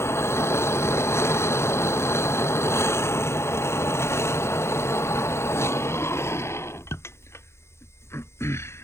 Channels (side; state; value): right; late; 0.13 ms